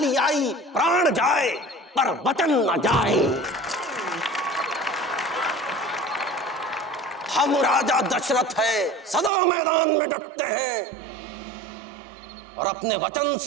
आई, प्राण जाए पर वचन न जाए। हम राजा दशरथ है, सदा मैदान में डटते हैं और अपने वचन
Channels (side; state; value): left; drops out; at 9.3 s